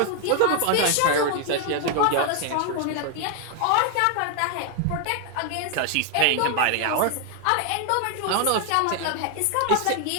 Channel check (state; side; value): different; both; correlation 0.00